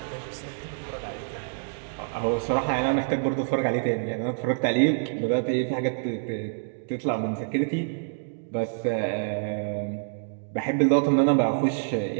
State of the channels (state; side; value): silent; left; digital silence